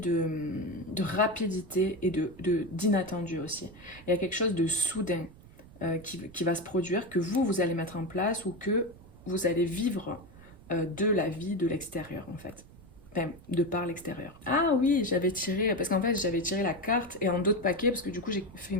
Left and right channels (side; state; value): right; noise; rumble, 21 dB below the sound